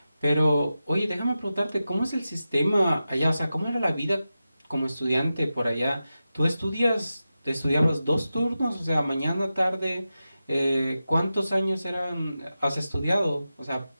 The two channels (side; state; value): both; inverted; correlation -0.92